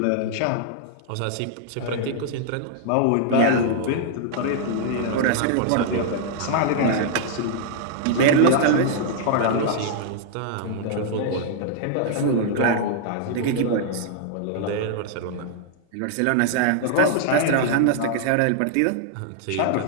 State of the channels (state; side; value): different; both; correlation -0.01